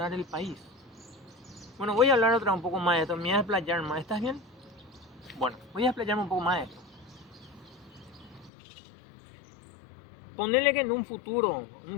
el país. Bueno, voy a hablar un poco más de esto, me voy a explayar más, ¿estás bien? Bueno, voy a explayarme un poco más de esto. Ponerle que en un futuro,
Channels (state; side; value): drops out; right; at 8.5 s